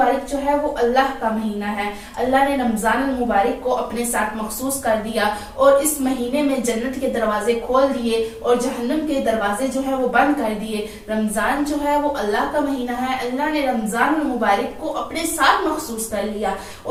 جو ہے وہ اللہ کا مہینہ ہے۔ اللہ نے رمضان المبارک کو اپنے ساتھ مخصوص کر دیا اور اس مہینے میں جنت کے دروازے کھول دیے اور جہنم کے دروازے جو ہے وہ بند کر دیے۔ رمضان جو ہے وہ اللہ کا مہینہ ہے، اللہ نے رمضان المبارک کو اپنے ساتھ مخصوص کر لیا،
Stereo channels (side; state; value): both; identical; correlation 1.00